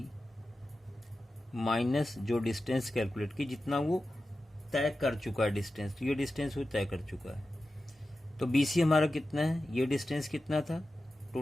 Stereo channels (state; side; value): normal; both; correlation 0.93